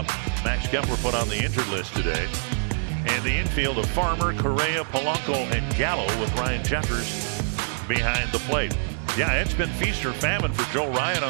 Max Kepler put on the injured list today. And the infield of Farmer, Correa, Polanco, and Gallo with Ryan Jeffers behind the plate. Yeah, it's been feast or famine for Joe Ryan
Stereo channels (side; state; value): left; silent; digital silence